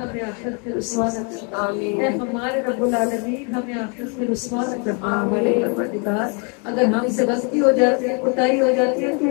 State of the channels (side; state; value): right; quieter; 36.4 dB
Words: ہمیں آخرت میں رسوا نہ کر۔ اے ہمارے رب العالمین، ہمیں آخرت میں رسوا نہ کرنا۔ ہمارے پروردگار، اگر ہم سے غلطی ہو جاتی ہے، کوتاہی ہو جاتی ہے،